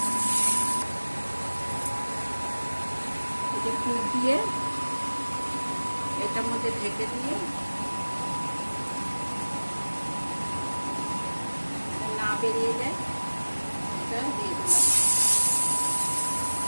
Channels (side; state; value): both; inverted; correlation -1.00